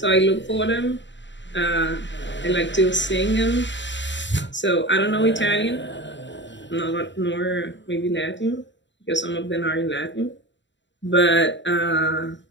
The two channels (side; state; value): right; late; 0.53 ms